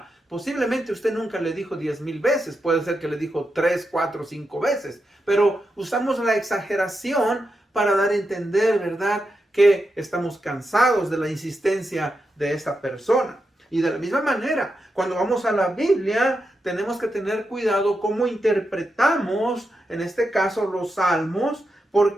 posiblemente usted nunca le dijo 10,000 veces, puede ser que le dijo 3, 4, 5 veces, pero usamos la exageración para dar a entender, ¿verdad?, que estamos cansados de la insistencia de esa persona. Y de la misma manera, cuando vamos a la Biblia, tenemos que tener cuidado cómo interpretamos, en este caso, los salmos,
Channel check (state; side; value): normal; both; correlation 0.87